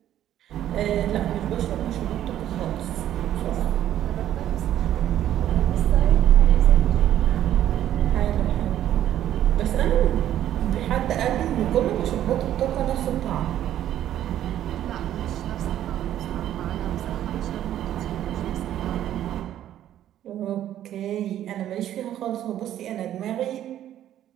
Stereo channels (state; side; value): quieter; left; 11.8 dB